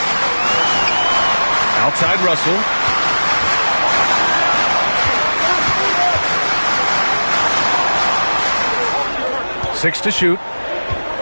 Outside Russell. 6 to shoot.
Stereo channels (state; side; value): inverted; both; correlation -1.00